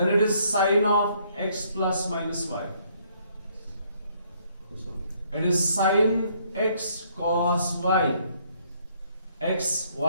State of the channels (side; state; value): both; inverted; correlation -0.67